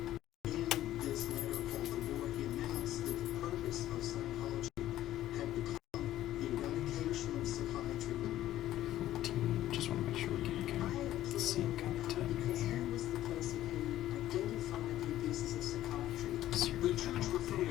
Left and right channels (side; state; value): right; quieter; 13.6 dB